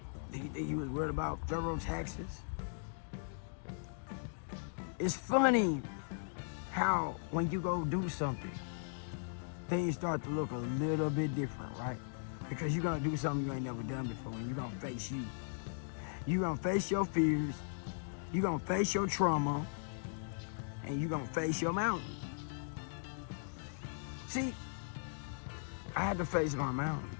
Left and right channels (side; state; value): right; silent; digital silence